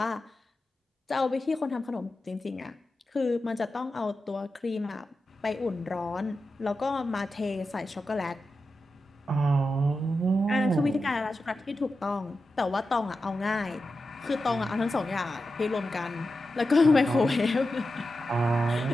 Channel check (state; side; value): normal; both; correlation 0.91